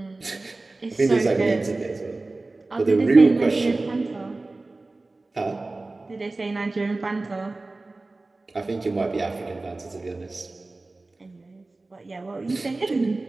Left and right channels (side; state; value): left; quieter; 3.2 dB